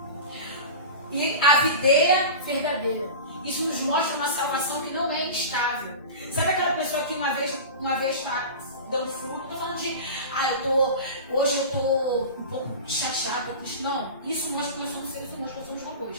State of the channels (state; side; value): inverted; both; correlation -0.30